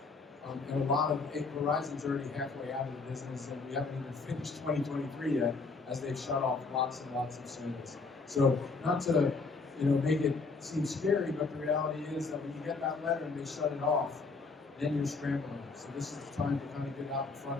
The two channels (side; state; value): right; quieter; 4.2 dB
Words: And a lot of Verizon's already halfway out of the business, and we haven't even finished 2023 yet, as they've shut off lots and lots of service. So not to make it seem scary, but the reality is that when you get that letter and they shut it off, then you're scrambling. So this is the time to kind of get out in